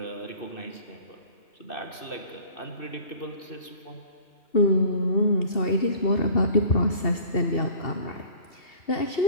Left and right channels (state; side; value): late; right; 2.6 ms